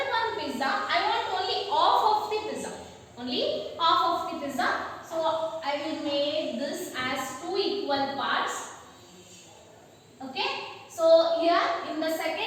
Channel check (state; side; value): identical; both; correlation 1.00